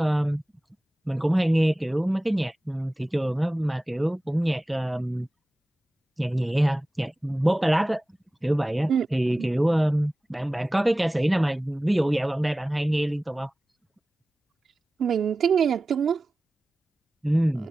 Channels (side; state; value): both; normal; correlation 0.97